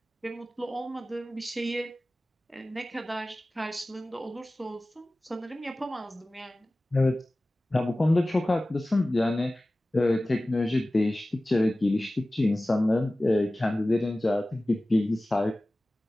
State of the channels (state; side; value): normal; both; correlation 0.97